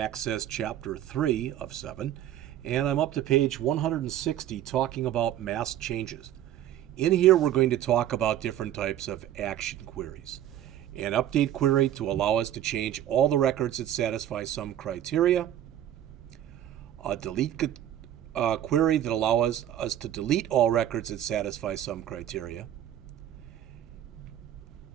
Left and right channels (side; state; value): left; quieter; 11.6 dB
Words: Chapter 3 of 7, and I'm up to page 160 talking about mass changes. In here, we're going to talk about different types of action queries. An update query to allow us to change all the records that satisfy some criteria. A delete query that allows us to delete all records that satisfy some criteria.